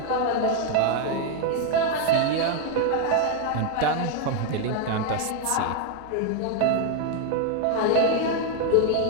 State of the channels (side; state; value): both; different; correlation 0.01